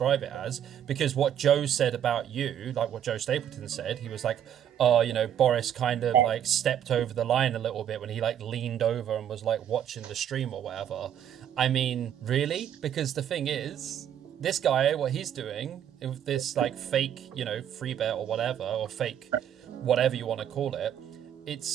it as, because what Joe said about you, like what Joe Stapleton said, he was like, oh, Boris kind of like stepped over the line a little bit when he like leaned over and was like watching the stream or whatever. I mean, really? Because the thing is, this guy, what he's doing with this like fake, free bet or whatever, or fake whatever you want to call it,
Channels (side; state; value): left; quieter; 9.8 dB